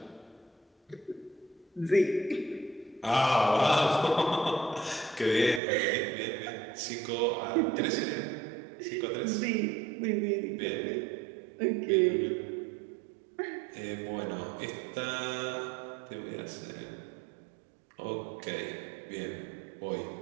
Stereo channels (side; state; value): left; drops out; at 5.6 s